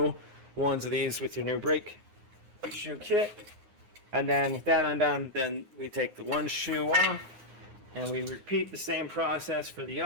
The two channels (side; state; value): left; late; 9.6 ms